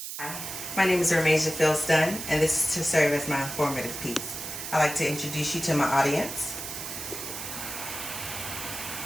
Hi, my name is Ramasia Philston, and this is to serve as my informative piece. I'd like to introduce you to my audience.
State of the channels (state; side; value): noise; right; hiss, 7 dB below the sound